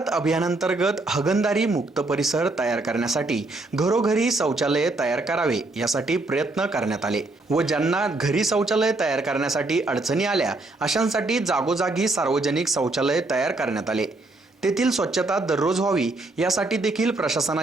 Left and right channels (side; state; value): left; quieter; 3.0 dB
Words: अभियानांतर्गत हागणदारी मुक्त परिसर तयार करण्यासाठी घरोघरी शौचालय तयार करावे यासाठी प्रयत्न करण्यात आले व ज्यांना घरी शौचालय तयार करण्यासाठी अडचणी आल्या अशांसाठी जागोजागी सार्वजनिक शौचालय तयार करण्यात आले। तेथील स्वच्छता दररोज व्हावी यासाठी देखील